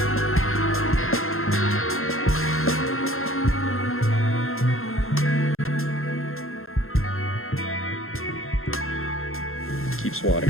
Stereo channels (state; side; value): late; right; 0.61 ms